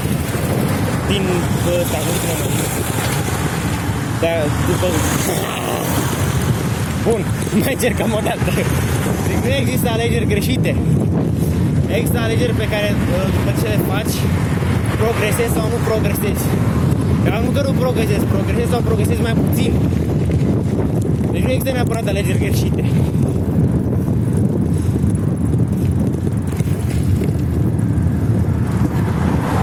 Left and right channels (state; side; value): identical; both; correlation 1.00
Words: din ăsta, nu știu cum mă. Dar după... Bun, mai încercăm o dată. Deci nu există alegeri greșite. Există alegeri pe care după ce le faci, progresezi sau nu progresezi. Dar nu că nu progresezi sau progresezi mai puțin. Deci nu există neapărat alegeri greșite.